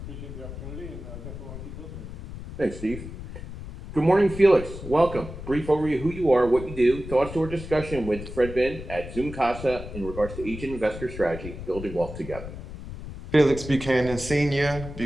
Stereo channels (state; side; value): noise; left; rumble, 11 dB below the sound